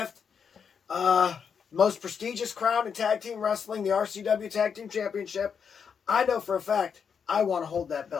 Most prestigious crown in tag team wrestling, the RCW Tag Team Championship. I know for a fact I want to hold that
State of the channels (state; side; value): quieter; right; 6.7 dB